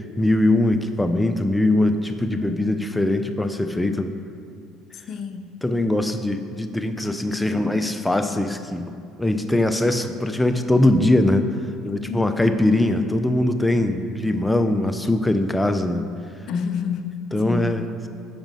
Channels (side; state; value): both; normal; correlation 0.87